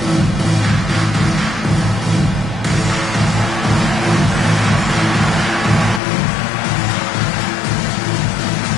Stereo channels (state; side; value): drops out; right; at 6.0 s